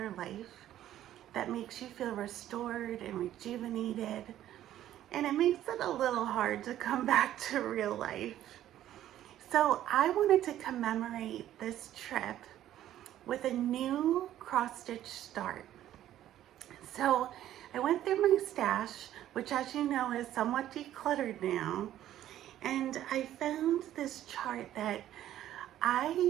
life, that makes you feel restored and rejuvenated, and it makes it a little hard to come back to real life. So I wanted to commemorate this trip with a new cross-stitch start. So I went through my stash, which, as you know, is somewhat decluttered now, and I found this chart that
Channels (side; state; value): left; quieter; 12.4 dB